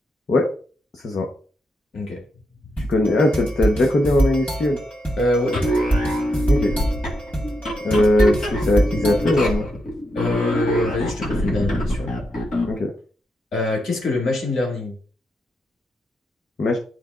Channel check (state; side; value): normal; both; correlation 0.83